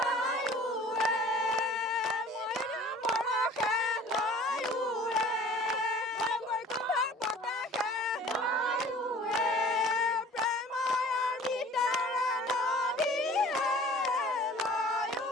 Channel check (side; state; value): both; normal; correlation 0.48